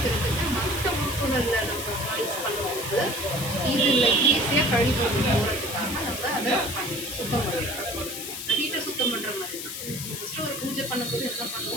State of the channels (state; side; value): noise; left; hiss, 7 dB below the sound